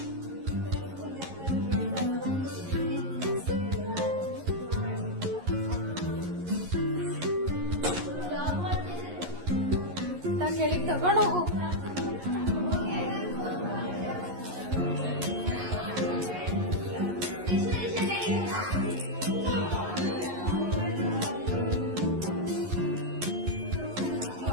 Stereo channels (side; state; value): left; late; 11 ms